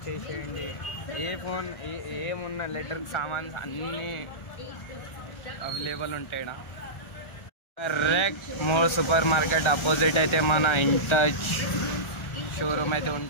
ఏ ఫోన్ ఏమున్న ఎలక్ట్రిక్ సామాన్స్ అన్నీ అవైలబుల్ ఉంటాయి. Correct more super market opposite అయితే మన ఇంటచ్ షోరూమ్ అయితే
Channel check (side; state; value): right; late; 1.3 ms